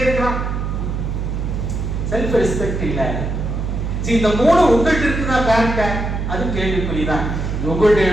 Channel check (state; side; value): noise; right; hum, 2 dB below the sound